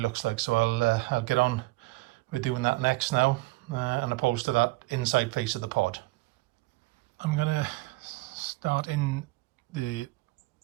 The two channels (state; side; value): quieter; left; 21.4 dB